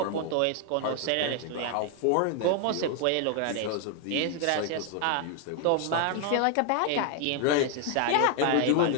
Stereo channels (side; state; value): both; different; correlation 0.00